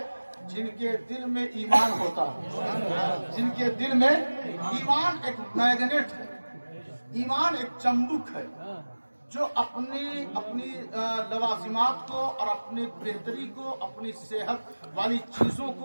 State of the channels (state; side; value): inverted; both; correlation -1.00